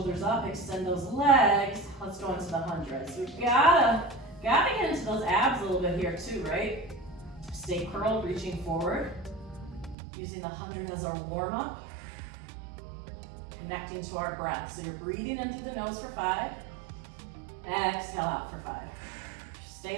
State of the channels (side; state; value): left; drops out; at 10.0 s